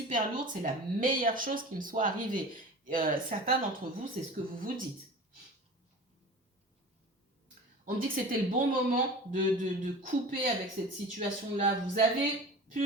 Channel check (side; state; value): both; normal; correlation 0.36